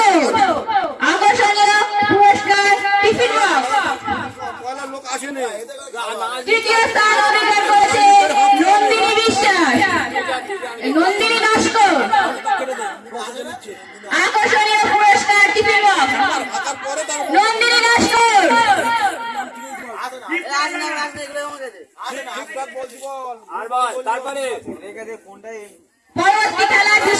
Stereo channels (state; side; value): identical; both; correlation 1.00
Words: আকর্ষণীয় পুরস্কার টিফিন বক্স। তৃতীয় স্থান অধিকার করেছে নন্দিনী বিশ্বাস, নন্দিনী নস্কর। আকর্ষণীয় পুরস্কার টিফিন বক্স নন্দিনী নস্কর। পরবর্তী খেলা